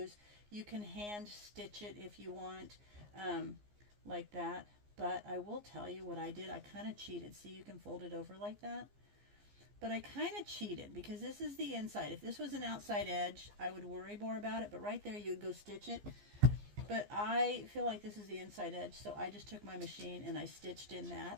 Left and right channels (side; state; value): left; late; 15 ms